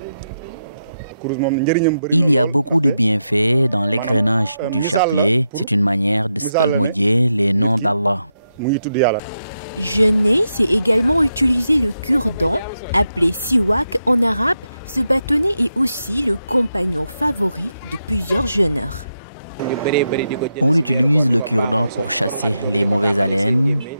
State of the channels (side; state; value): both; inverted; correlation -0.85